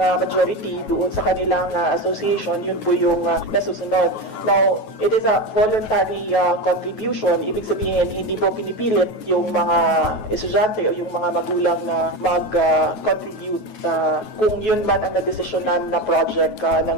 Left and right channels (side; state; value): right; late; 9.3 ms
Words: majority doon sa kanilang association, yun po yung nasusunod. Now, it is a voluntary contribution. Ibig sabihin, hindi po pinipilit yung mga estudyante o yung mga magulang na mag-contribute kung yun man ang nadesisyonan na project